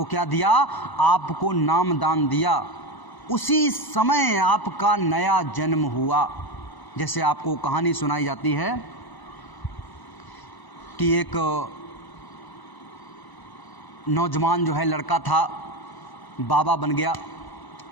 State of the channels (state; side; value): late; right; 1.0 ms